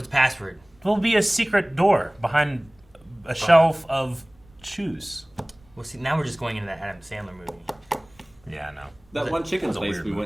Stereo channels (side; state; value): right; noise; rumble, 30 dB below the sound